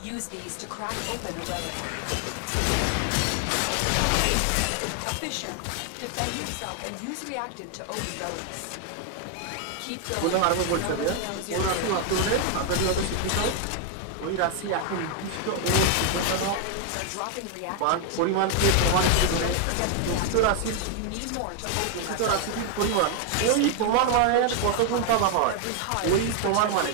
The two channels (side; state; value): both; different; correlation 0.01